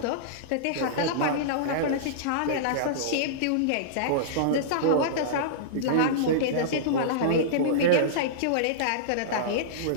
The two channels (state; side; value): different; both; correlation -0.03